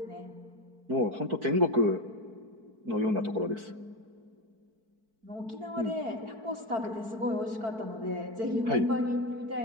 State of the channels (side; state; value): left; late; 4.5 ms